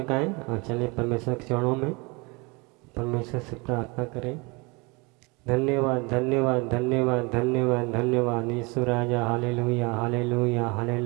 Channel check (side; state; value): left; quieter; 27.7 dB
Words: और चलिए परमेश्वर के चरणों में परमेश्वर से प्रार्थना करें। धन्यवाद धन्यवाद धन्यवाद धन्यवाद धन्यवाद यीशु राजा। Hallelujah hallelujah